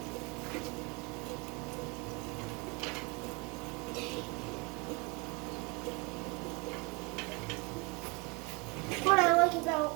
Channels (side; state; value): left; quieter; 28.9 dB